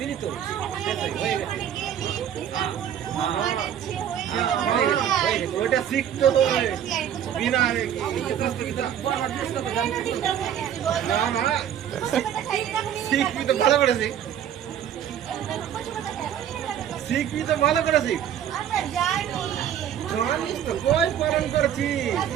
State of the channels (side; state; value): left; quieter; 9.7 dB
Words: তো শেষ হয়ে গেছে ওইটা শিখতে হবে বিনা না না শিখবি তো ভালো করে শিখ শিখবি তো ভালো করে শিখ জানিস তো কই পালন করছি